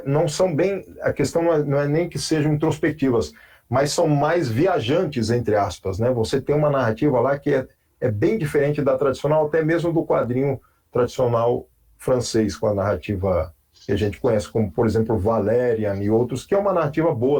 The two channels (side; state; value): both; identical; correlation 1.00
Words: não são bem... A questão não é nem que sejam introspectivas, mas são mais viajantes, entre aspas, né? Você tem uma narrativa lá que é bem diferente da tradicional, até mesmo do quadrinho tradicional francês, com a narrativa que a gente conhece, como, por exemplo, Valerian e outros, que é uma narrativa